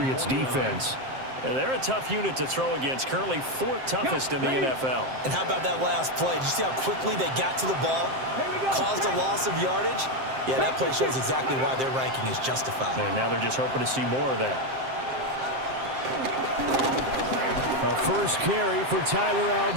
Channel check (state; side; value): late; left; 7.6 ms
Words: defense. They're a tough unit to throw against. Currently 4th toughest in the NFL. And how about that last play? Did you see how quickly they got to the ball? Caused a loss of yardage? Yeah, that play shows exactly why their ranking is justified. And now they're just hoping to see more of that. A 1st carry for Tyler